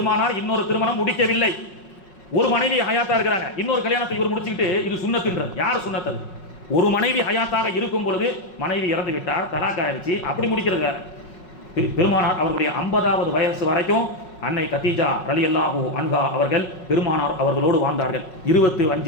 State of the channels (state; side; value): late; right; 5.4 ms